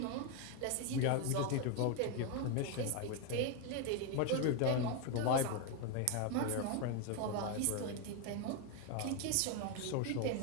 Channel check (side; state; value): both; different; correlation 0.01